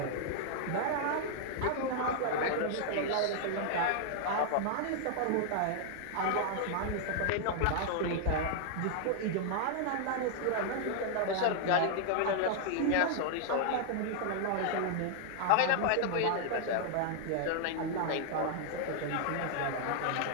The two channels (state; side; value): different; both; correlation 0.00